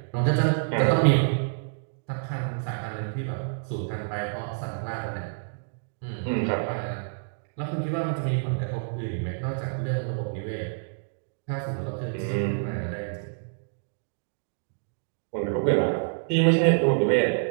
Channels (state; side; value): silent; left; digital silence